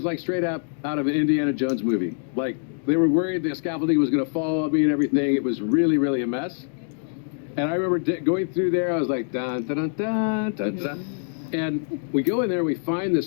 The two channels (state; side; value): silent; right; digital silence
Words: like straight up out of an Indiana Jones movie. Like, they were worried the scaffolding was going to fall on me and everything. It was really, really a mess. And I remember going through there, I was like, dun, dun, dun, dun, dun, dun. And we go in there and we find